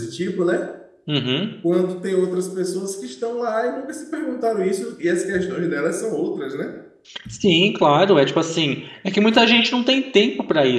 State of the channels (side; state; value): both; identical; correlation 1.00